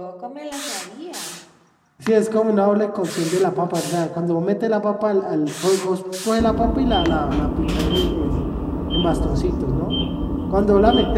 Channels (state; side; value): identical; both; correlation 1.00